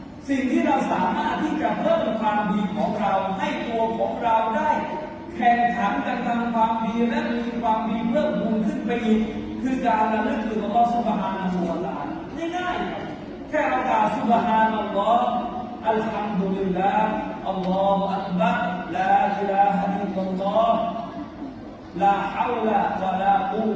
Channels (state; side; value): identical; both; correlation 1.00